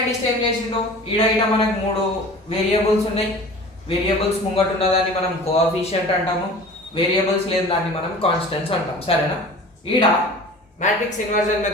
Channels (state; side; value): normal; both; correlation 0.41